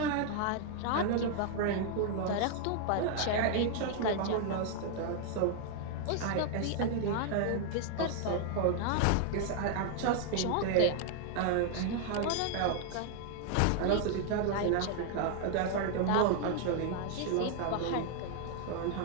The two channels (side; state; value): both; different; correlation 0.00